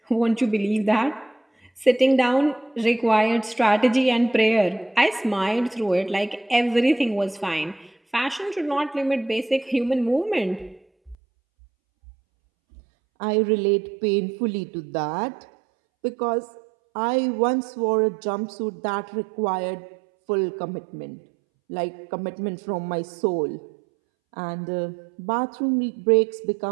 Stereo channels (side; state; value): left; drops out; at 11.2 s